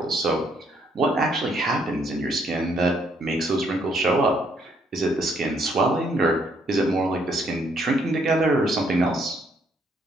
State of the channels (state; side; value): normal; both; correlation 0.69